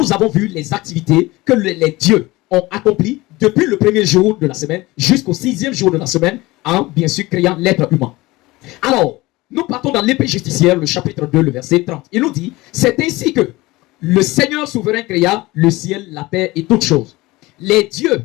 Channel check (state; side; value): quieter; right; 20.4 dB